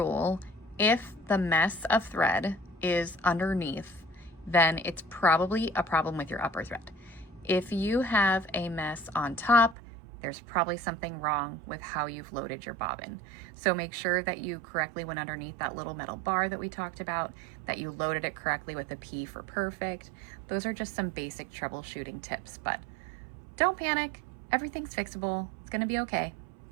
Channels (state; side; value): drops out; left; at 9.8 s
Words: if the mess of thread is underneath, then it's probably a problem with your upper thread. If you have a mess on top, there's probably something wrong with how you've loaded your bobbin. So make sure that you correctly went underneath that little metal bar that we talked about, that you loaded it correctly with a P for perfect. Those are just some basic troubleshooting tips, but don't panic. Everything's fixable. It's gonna be okay.